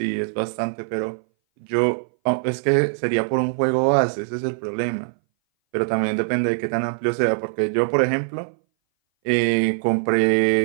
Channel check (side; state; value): left; silent; 60 dB below the other